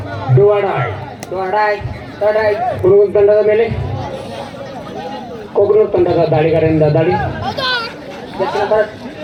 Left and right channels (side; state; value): both; identical; correlation 1.00